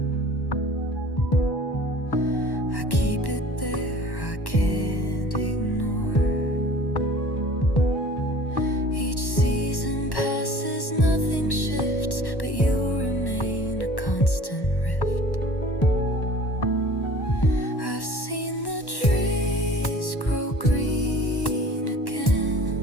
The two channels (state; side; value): late; right; 1.1 ms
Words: I keep it there, I can't ignore. Each season passes, nothing shifts, but you remain a constant rift. I've seen the trees grow green